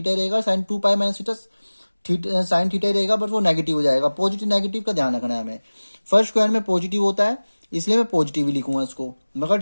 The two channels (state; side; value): inverted; both; correlation -1.00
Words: ही रहेगा, sine 2 pi minus theta sine theta ही रहेगा, बट वो नेगेटिव हो जाएगा। पॉजिटिव नेगेटिव का ध्यान रखना है हमें। फर्स्ट क्वाड्रेंट में पॉजिटिव होता है, इसलिए मैं पॉजिटिव ही लिखूंगा इसको,